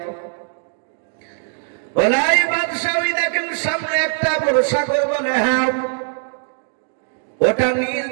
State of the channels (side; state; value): left; silent; 58 dB below the other